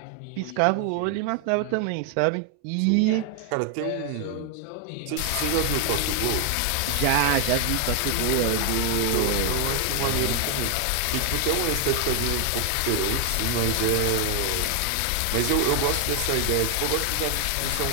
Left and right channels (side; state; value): both; different; correlation 0.00